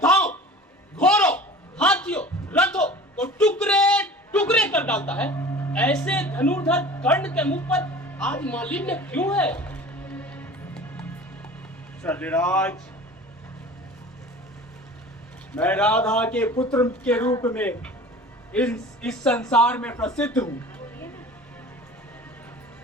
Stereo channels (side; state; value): both; normal; correlation 0.41